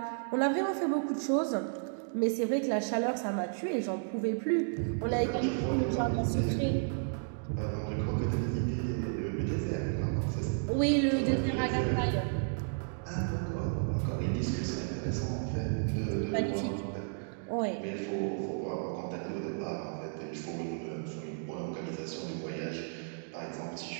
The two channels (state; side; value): silent; left; digital silence